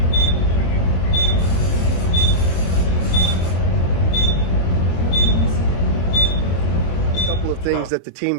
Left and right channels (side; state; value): right; late; 22 ms